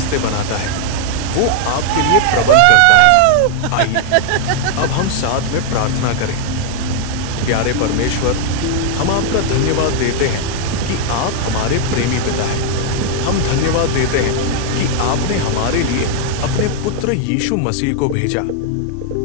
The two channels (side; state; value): both; different; correlation 0.00